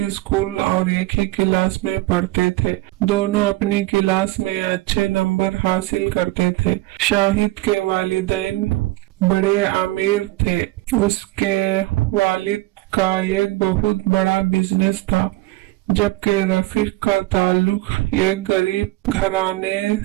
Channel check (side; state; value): left; quieter; 18.9 dB